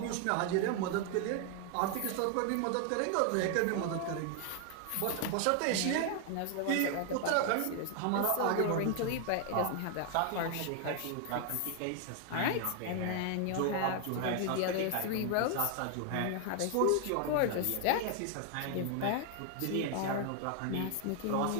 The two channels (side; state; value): both; different; correlation 0.00